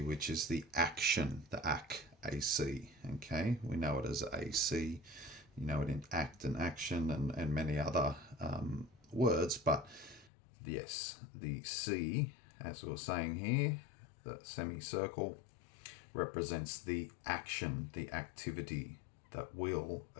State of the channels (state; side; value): drops out; right; at 10.3 s